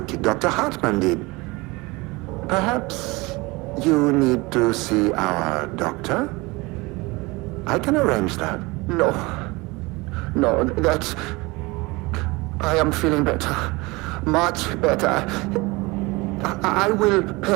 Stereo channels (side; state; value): left; quieter; 23.8 dB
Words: Dr. Hartman did. Perhaps you need to see our doctor? I can arrange that. No. No, that's... I am feeling better. Much better. I will